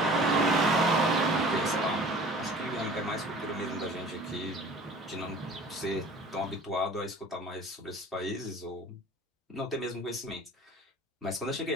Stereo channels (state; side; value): normal; both; correlation 0.45